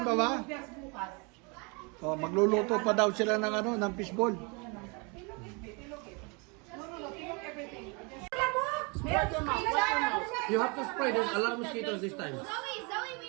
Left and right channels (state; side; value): quieter; left; 31.4 dB